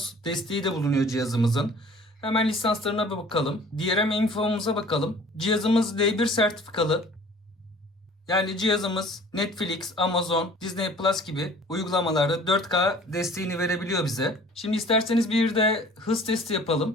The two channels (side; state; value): both; normal; correlation 0.49